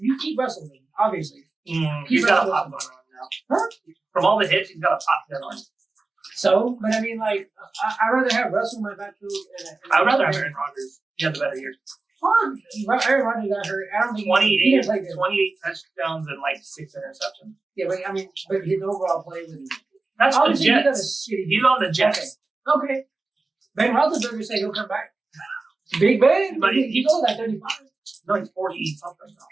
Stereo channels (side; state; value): left; quieter; 3.5 dB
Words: keep Russell, then, obviously. He's got a pop gun on now. Huh? From all the hits, he's got a pop gun on. So, but I mean, like, I'd rather have Russell in my backfield. I'd rather have Aaron Rodgers. He had the better year. Aaron Rodgers got hurt. I don't think 28 touchdowns and like 6 interceptions. Yeah, but I mean, but his overall play was. That's the Jets. He's on the Jets. Okay. Ben Roethlisberger said he'll come back. Big Ben, but he goes at 35. No, he's 40 something. Oh